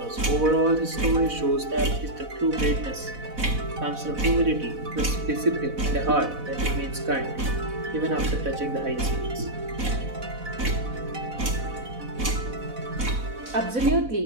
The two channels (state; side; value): late; left; 4.1 ms